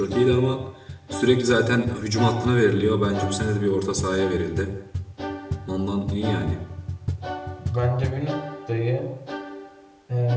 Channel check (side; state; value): both; identical; correlation 1.00